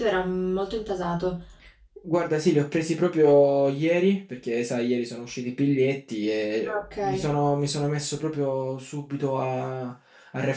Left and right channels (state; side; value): identical; both; correlation 1.00